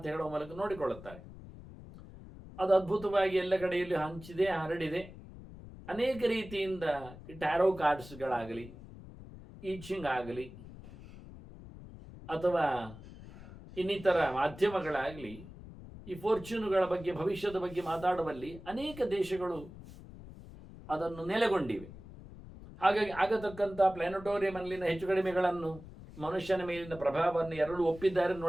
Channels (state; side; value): noise; left; rumble, 16 dB below the sound